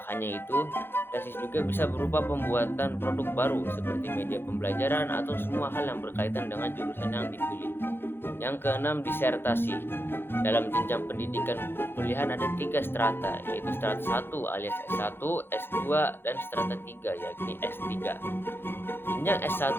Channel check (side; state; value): right; late; 0.10 ms